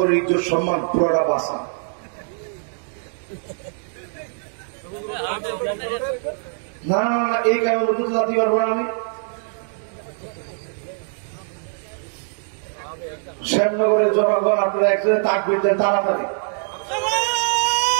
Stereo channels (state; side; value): silent; left; digital silence